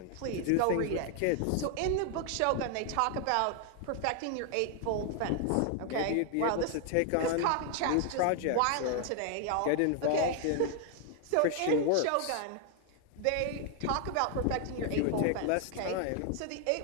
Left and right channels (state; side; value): different; both; correlation 0.00